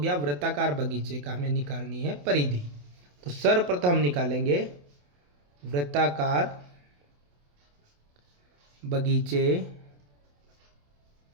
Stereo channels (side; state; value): left; late; 28 ms